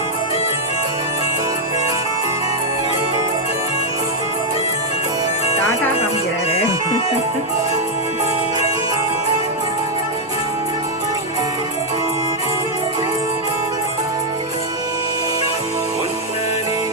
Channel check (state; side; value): normal; both; correlation -0.01